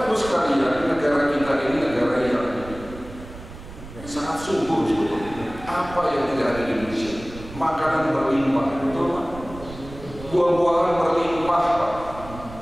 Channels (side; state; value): right; noise; rumble, 15 dB below the sound